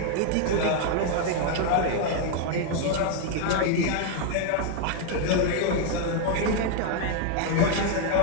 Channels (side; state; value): both; different; correlation 0.00